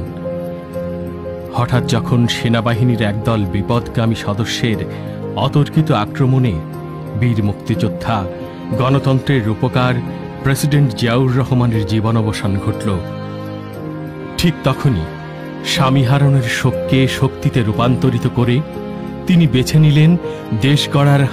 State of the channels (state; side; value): identical; both; correlation 1.00